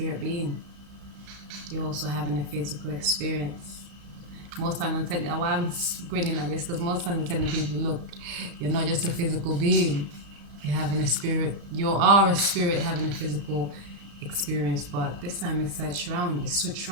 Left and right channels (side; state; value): left; late; 35 ms